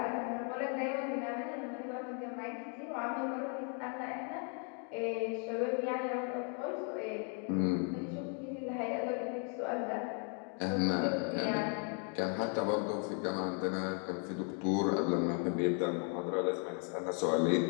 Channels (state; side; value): quieter; right; 39.8 dB